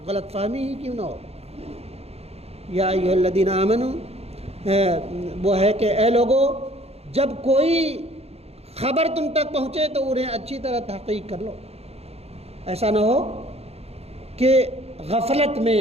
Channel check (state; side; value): late; left; 0.30 ms